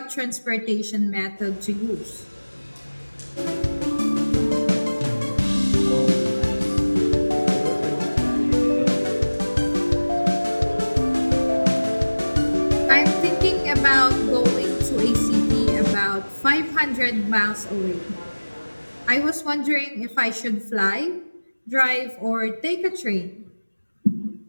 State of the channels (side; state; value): both; inverted; correlation -1.00